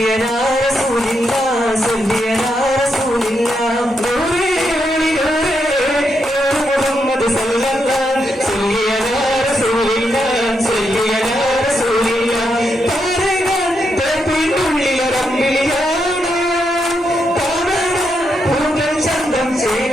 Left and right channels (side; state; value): both; normal; correlation 0.81